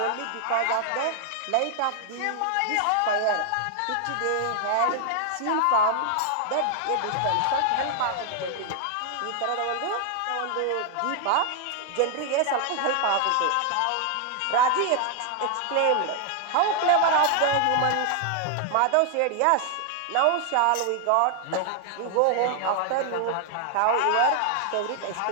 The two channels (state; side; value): different; both; correlation 0.00